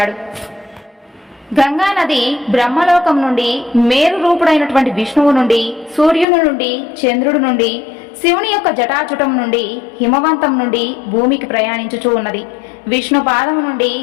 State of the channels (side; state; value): right; drops out; at 6.2 s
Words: గంగానది బ్రహ్మలోకం నుండి మేరు రూపుడైనటువంటి విష్ణువు నుండి, సూర్యుని నుండి, చంద్రుడి నుండి, శివుని యొక్క జటాజుటం నుండి, హిమవంతం నుండి భూమికి ప్రయాణించుచూ ఉన్నది. విష్ణు పాదము నుండి